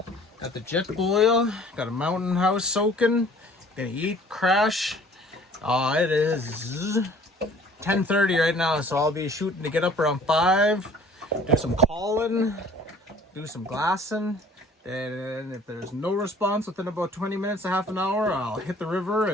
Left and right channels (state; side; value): normal; both; correlation 0.52